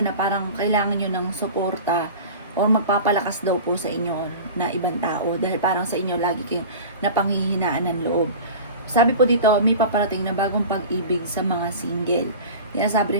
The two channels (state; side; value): inverted; both; correlation -0.35